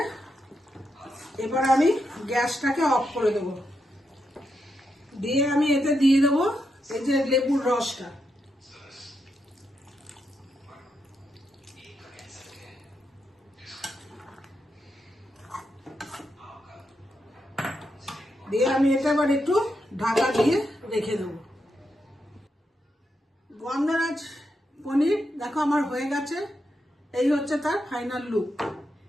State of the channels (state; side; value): normal; both; correlation 0.83